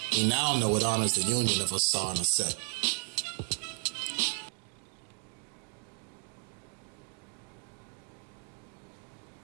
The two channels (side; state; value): left; quieter; 39.6 dB